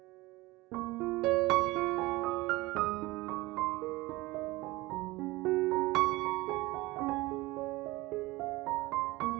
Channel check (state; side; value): quieter; left; 20.6 dB